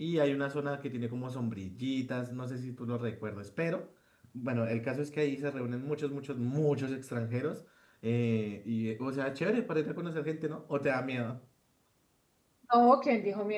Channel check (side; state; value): both; identical; correlation 1.00